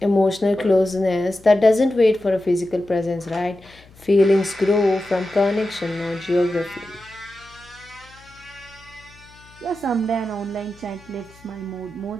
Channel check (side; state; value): left; noise; hum, 25 dB below the sound